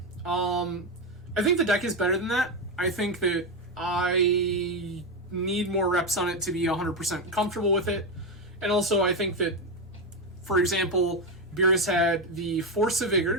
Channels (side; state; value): right; noise; hum, 30 dB below the sound